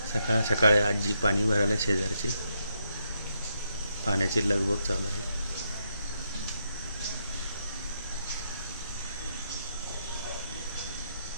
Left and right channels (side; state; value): both; inverted; correlation -0.80